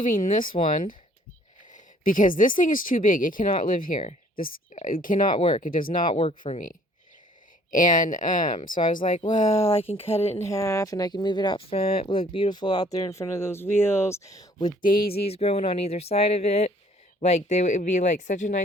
this one because this thing is too big. It cannot live here. It cannot work. It does not work for me. And so I was like, well, I can cut it in half and I can move it out front. It will look beautiful out there in front of those wheels with daisies growing on either side of it. Like, it would be like such a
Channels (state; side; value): normal; both; correlation 0.58